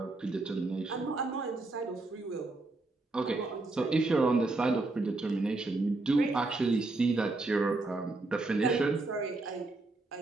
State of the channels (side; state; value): left; quieter; 3.2 dB